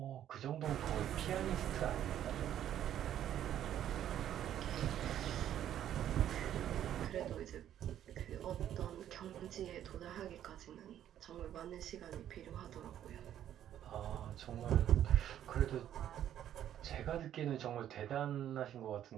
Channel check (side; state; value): left; quieter; 10.9 dB